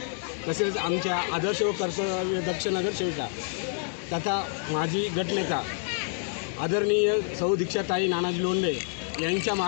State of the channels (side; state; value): right; silent; 59 dB below the other